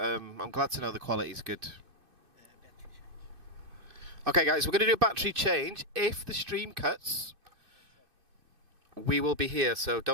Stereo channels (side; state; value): left; late; 2.6 ms